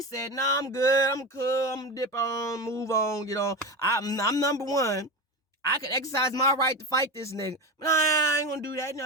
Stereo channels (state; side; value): normal; both; correlation 0.22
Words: said, nah, I'm good. I'm cool. I'm gonna dip on, move on, get on. I'm number 1. I could exercise my right to fight this nigga. But I ain't gonna do that.